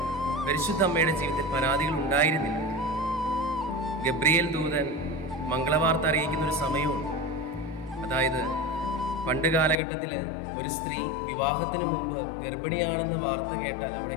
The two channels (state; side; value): drops out; right; at 9.8 s